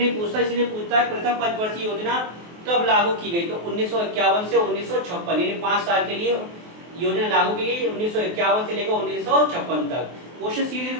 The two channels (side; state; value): left; late; 23 ms